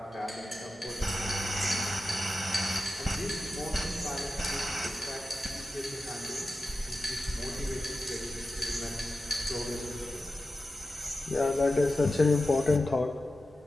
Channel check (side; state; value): both; normal; correlation 0.92